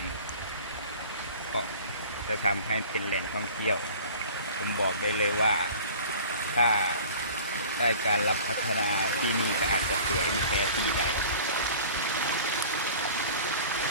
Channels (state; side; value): inverted; both; correlation -0.43